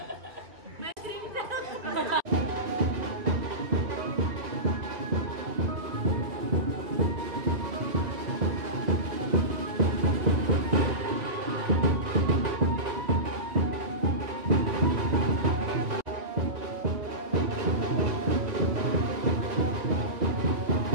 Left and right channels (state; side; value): late; left; 2.4 ms